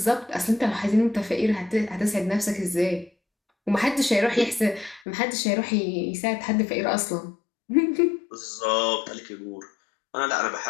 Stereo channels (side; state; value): right; drops out; at 5.0 s